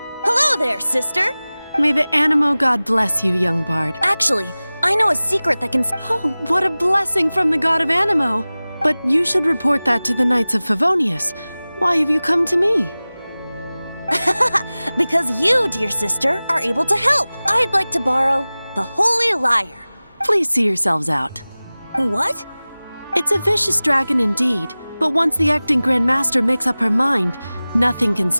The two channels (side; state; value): both; inverted; correlation -0.98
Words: Hello there, sister! May the Animo god bless you, young bard. Actually, I know a secret that can... Oh, what a blessing from the god of Animo! But you should report that to the Knights of Favonius. Why have you come to me? Because you, dear sister, are able to help. I'd like to borrow the Holy Lyre. Please see yourselves out. What? It's a vicious dragon indeed, but once the acting Grand Master makes up her mind, nothing can